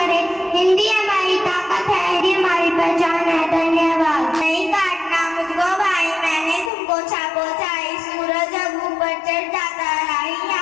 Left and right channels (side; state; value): right; drops out; at 6.7 s